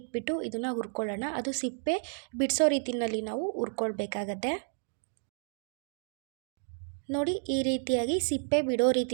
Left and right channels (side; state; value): left; silent; 57 dB below the other